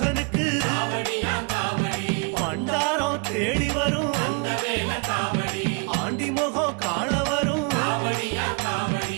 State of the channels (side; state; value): left; quieter; 35.0 dB